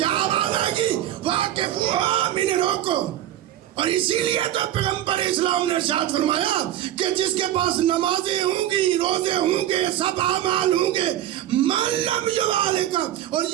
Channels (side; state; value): left; quieter; 12.6 dB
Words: آواز آئے گی؟ واقفوہم, انہیں روکو. اور اسی لیے تو پیغمبر اسلام نے ارشاد فرمایا کہ جس کے پاس نمازیں ہوں گی, روزے ہوں گے, سب اعمال ہوں گے, من لم یوالکا, اور